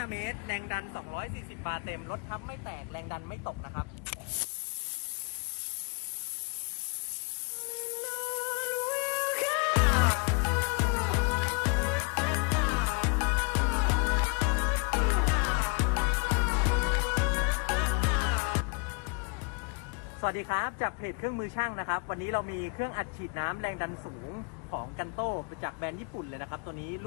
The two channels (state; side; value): quieter; right; 33.9 dB